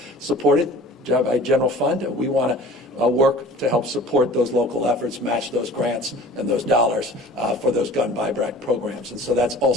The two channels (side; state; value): both; normal; correlation 0.44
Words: supported by general fund. We want to work to help support those local efforts, match those grants and those dollars for those gun buyback programs. And so that's